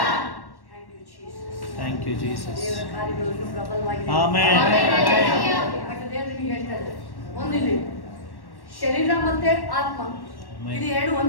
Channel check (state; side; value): late; right; 1.1 ms